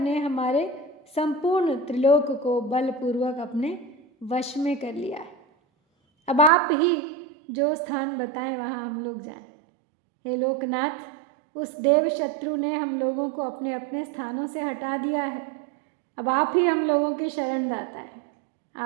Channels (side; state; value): left; drops out; at 6.5 s